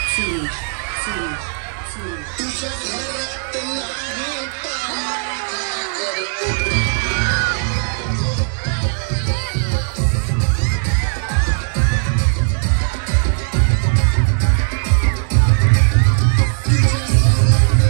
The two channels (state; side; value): silent; left; digital silence